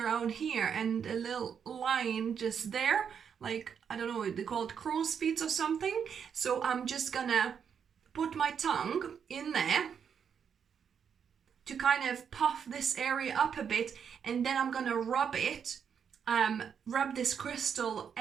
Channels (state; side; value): quieter; left; 7.4 dB